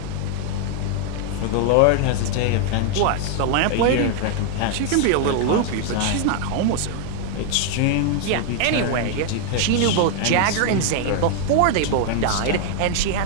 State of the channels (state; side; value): different; both; correlation 0.00